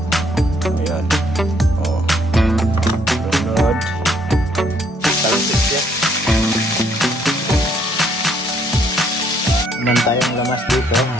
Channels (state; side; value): normal; both; correlation 0.68